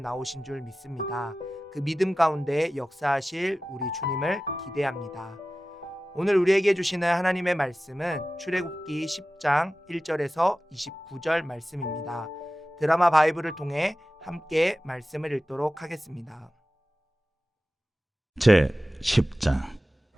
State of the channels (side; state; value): both; normal; correlation 0.95